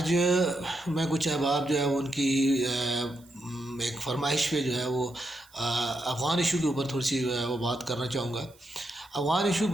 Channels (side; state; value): right; noise; hiss, 28 dB below the sound